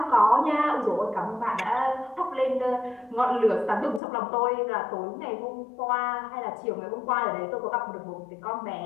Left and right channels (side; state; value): right; drops out; at 4.0 s